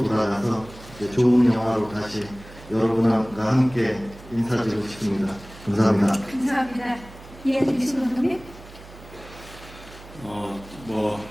돌아가서 이제 좋은 영화로 다시 여러분과 함께 인사드리고 싶습니다. 감사합니다. 감사합니다. 이해드리신 감독님?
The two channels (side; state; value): right; noise; hum, 19 dB below the sound